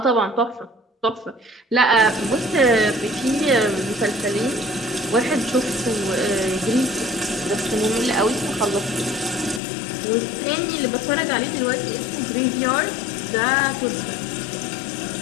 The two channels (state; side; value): drops out; right; at 9.6 s